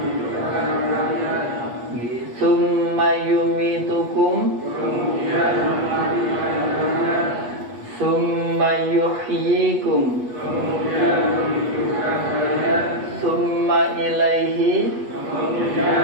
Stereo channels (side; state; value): left; late; 8.1 ms